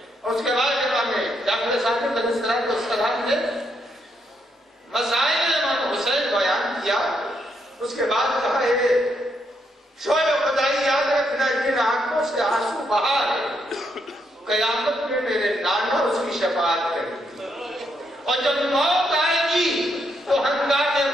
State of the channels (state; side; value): normal; both; correlation 0.77